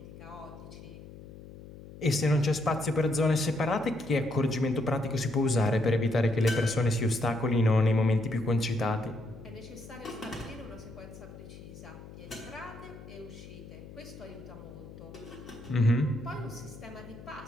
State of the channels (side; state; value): left; noise; hum, 16 dB below the sound